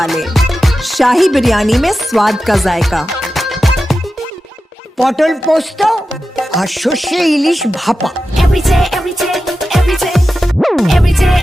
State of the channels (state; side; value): normal; both; correlation 0.92